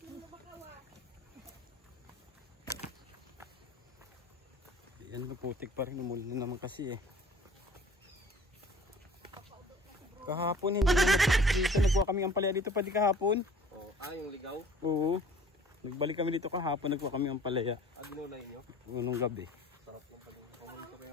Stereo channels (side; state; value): both; normal; correlation 0.49